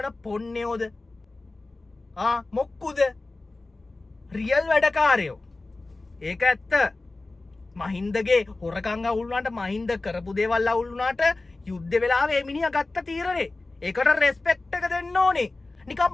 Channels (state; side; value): quieter; right; 3.2 dB